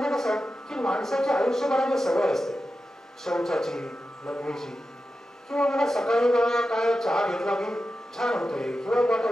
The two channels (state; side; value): normal; both; correlation 0.91